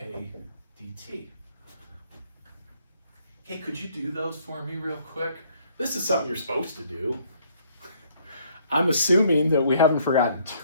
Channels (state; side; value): inverted; both; correlation -0.64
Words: dt. Hey, could you do those for me real quick? This is something you're supposed to do. I'm assuming that we haven't forgotten